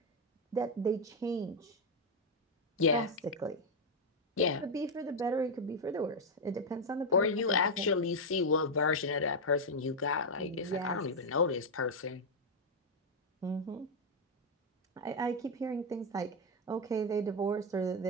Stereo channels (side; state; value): both; normal; correlation 0.02